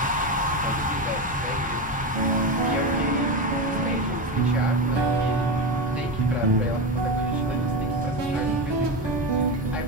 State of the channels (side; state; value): both; normal; correlation 0.17